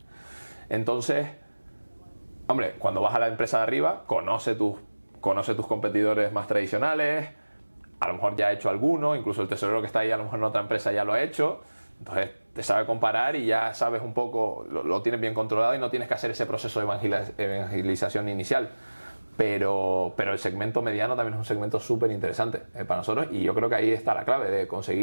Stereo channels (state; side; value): inverted; both; correlation -1.00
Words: Entonces, hombre, cuando vas a la empresa de arriba, conoce tus competidores más tradicionales, a lo mejor ya ha hecho alguno, incluso el tesorero que está ahí a lo mejor en otra empresa ya lo ha hecho, entonces te sabe comparar y ya sabes un poco, lo tienes bien controlado y no tienes que hacer ese proceso de evangelización inicial. Pero el segmento mediano también es un segmento súper interesante para nosotros y yo creo que ahí está la clave de